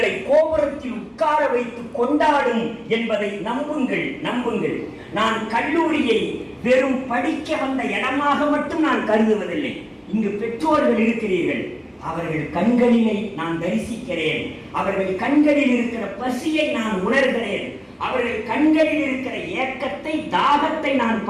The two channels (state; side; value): identical; both; correlation 1.00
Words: கோபுரத்தில் உட்கார வைத்து கொண்டாடும் என்பதை நம்புங்கள். நான் கல்லூரியை வெறும் படிக்க வந்த இடமாக மட்டும் நான் கருதுவதில்லை. இங்கு பெற்றோர்கள் இருக்கிறீர்கள், அவர்கள் கண்களிலே நான் தரிசிக்கிறேன். அவர்கள் கண்களில் இருக்கிற பசியை நான் உணர்கிறேன். அவர்கள் கண்களில் இருக்கிற ஏக்கத்தை, தாகத்தை நான்